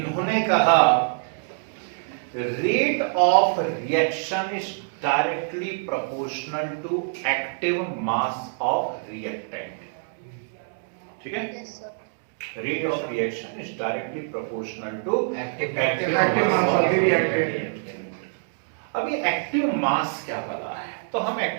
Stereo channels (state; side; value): silent; left; digital silence